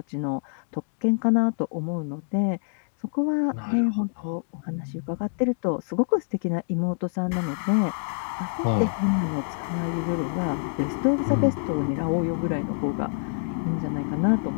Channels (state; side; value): silent; right; digital silence